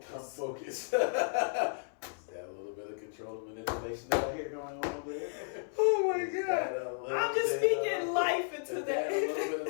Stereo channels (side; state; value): right; silent; 55 dB below the other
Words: Become focused. Is that a little bit of control and manipulation that I hear going on over there? Oh my God. I'm just speaking life into that. A little